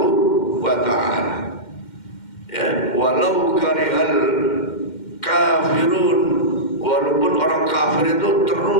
wa ta'ala. Ya, walau karihal kafirun, walaupun orang kafir itu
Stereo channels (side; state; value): right; late; 2.1 ms